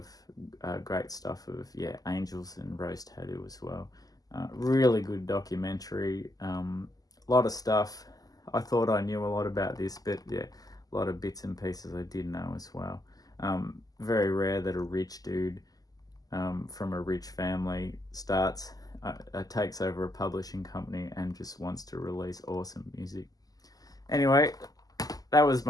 great stuff of Angels and Rose Tattoo as well. Really good documentary. A lot of stuff. I thought I knew a lot about this, but a lot of bits and pieces I did know as well. Very rare that a rich dude from a rich family takes over a publishing company and just wants to release awesome music. Anyway, that was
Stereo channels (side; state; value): right; late; 0.18 ms